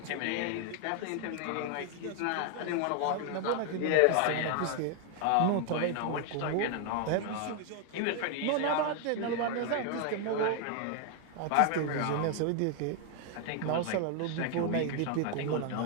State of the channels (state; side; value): different; both; correlation 0.00